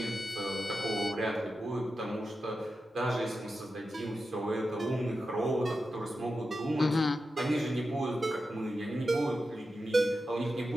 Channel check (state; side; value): normal; both; correlation 0.91